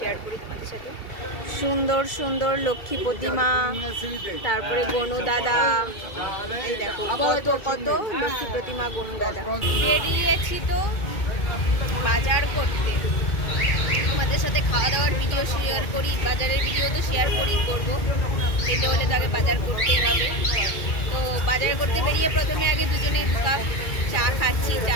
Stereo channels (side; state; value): right; late; 2.2 ms